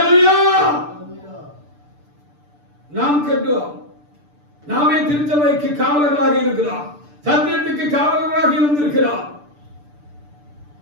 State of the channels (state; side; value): late; left; 6.8 ms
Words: நாம் கட்டுவோம். நாமே திருச்சபைக்கு காவலர்களாக இருக்கிறோம். சத்தியத்துக்கு காவலர்களாக இருந்திருக்கிறோம்.